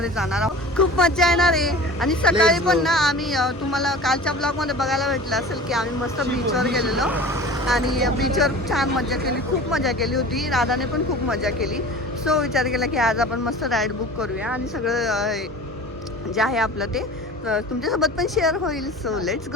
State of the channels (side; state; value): both; normal; correlation 0.39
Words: जाणार आहोत. खूप मजा येणार आहे. आणि सकाळी पण ना आम्ही तुम्हाला कालच्या ब्लॉगमध्ये बघायला भेटलं असेल की आम्ही मस्त बीचवर गेलेलो आणि बीचवर छान मजा केली, खूप मजा केली होती. राधाने पण खूप मजा केली. सो विचार केला की आज आपण मस्त राईड बुक करूया आणि सगळं जे आहे आपलं ते तुमच्यासोबत पण शेअर होईल. So let's